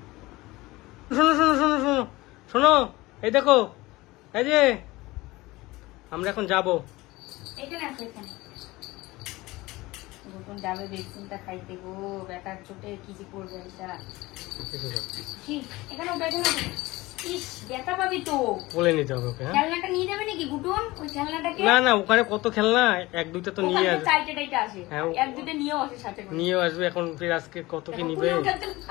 শোনো শোনো শোনো শোনো শোনো, এই দেখো, এই যে আমরা এখন যাবো, এখানে আছে, এখানে নতুন যাবে ভ্যাকসিনটা খাইতে গো, বেটার চোটে কি যে করবে এটা। এখানে ওটা ইস ব্যথা পাবি তো, বলে নিতে হবে ওকে। খেলনাটা নিয়ে যাবে নাকি গুটুন? ওই খেলনাটাকে না না, ওখানে কত খেলনা, এক দুইটা তো নিয়ে আসবে, চাইটা আসে, এক দুইটা নিয়েও আসে সাথে করে, নিয়েও আসবে। এখন ফির আজকে কত কি নিবে,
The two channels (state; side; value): quieter; right; 20.3 dB